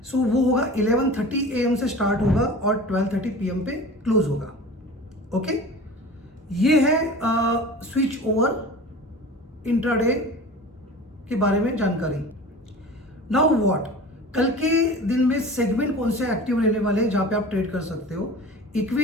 वो होगा 11:30 AM से स्टार्ट होगा और 12:30 PM पे क्लोज होगा। ओके, ये है स्विच ओवर इंट्राडे के बारे में जानकारी। नाउ व्हाट, कल के दिन में सेगमेंट कौन से एक्टिव रहने वाले हैं जहां पे आप ट्रेड कर सकते हो।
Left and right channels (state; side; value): normal; both; correlation 0.37